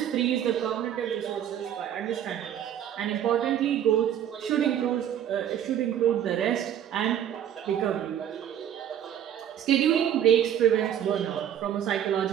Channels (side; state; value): left; quieter; 10.2 dB